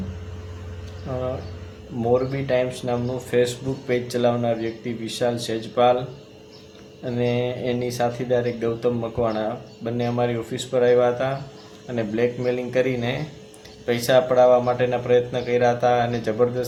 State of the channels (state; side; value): identical; both; correlation 1.00